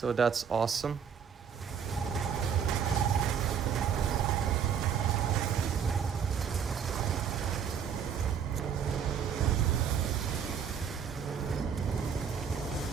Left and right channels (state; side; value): quieter; left; 7.5 dB